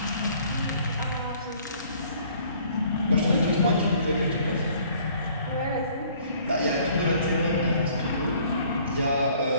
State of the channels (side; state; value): both; inverted; correlation -0.58